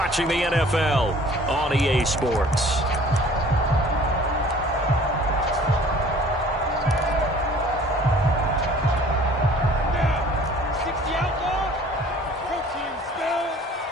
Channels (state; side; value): normal; both; correlation 0.51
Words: the NFL on EA Sports.